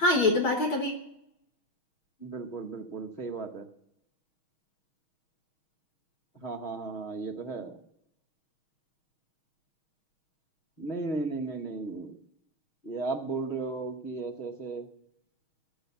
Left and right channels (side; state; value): right; late; 6.3 ms